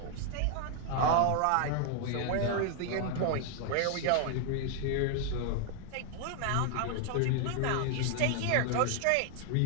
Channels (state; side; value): different; both; correlation 0.00